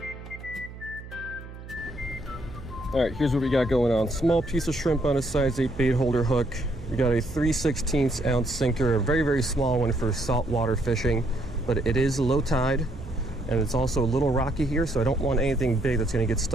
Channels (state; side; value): noise; right; hum, 14 dB below the sound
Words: Alright, here's what we got going on. Small piece of shrimp on a size 8 bait holder hook. We got a 3/16 ounce sinker, a very, very small one for saltwater fishing, but it is low tide, and it's also a little rocky here, so I don't want anything big that's going to get